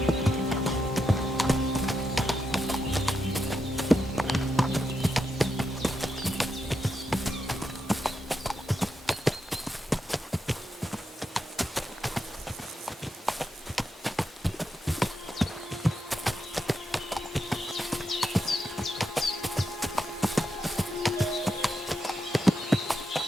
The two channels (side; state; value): both; normal; correlation 0.85